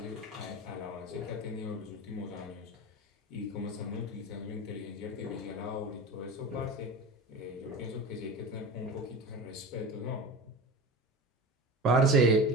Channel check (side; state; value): both; normal; correlation 0.31